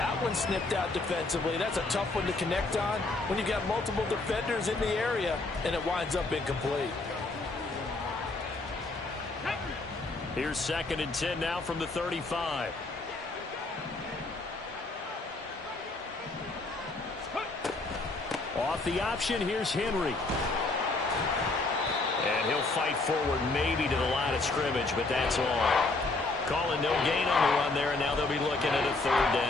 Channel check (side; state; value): right; quieter; 3.3 dB